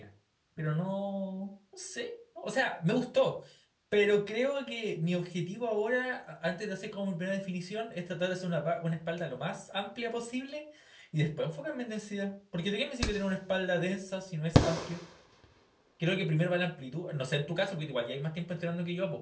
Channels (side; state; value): both; identical; correlation 1.00